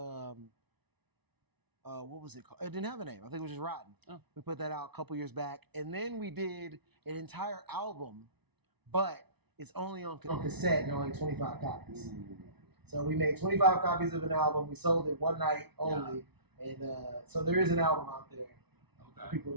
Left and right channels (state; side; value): late; left; 0.99 ms